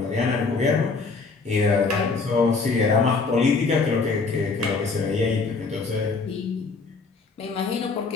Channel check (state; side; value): quieter; right; 4.3 dB